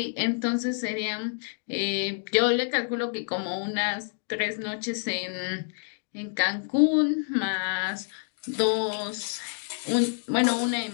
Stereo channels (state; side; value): silent; right; digital silence